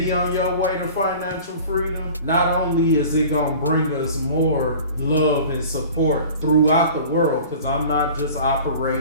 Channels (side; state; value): both; inverted; correlation -0.43